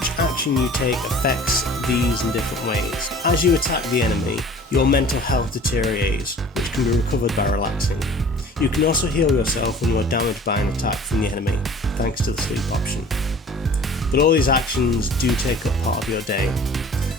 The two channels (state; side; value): normal; both; correlation 0.47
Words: action you take affects these in different ways. As you attack the enemy, your mental health deteriorates, which can be recovered by relaxing. You can also heal yourself when you are damaged by an attack from the enemy, thanks to the sleep option. But all these actions do take up part of your day.